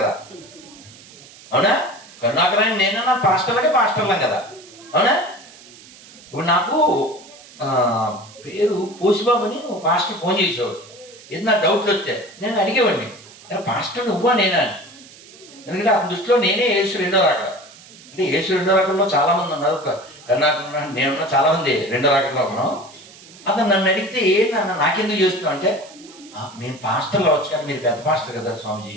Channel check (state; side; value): noise; right; hiss, 21 dB below the sound